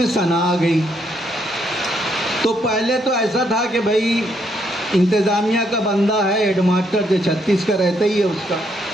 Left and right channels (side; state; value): both; normal; correlation 0.74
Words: सना आ गई। तो पहले तो ऐसा था कि भाई इंतज़ामिया का बंदा है, हेडमास्टर जो 36 का रहता ही है उसका।